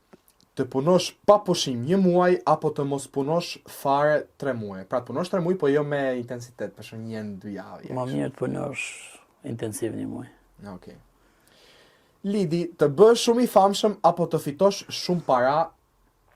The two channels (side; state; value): both; identical; correlation 1.00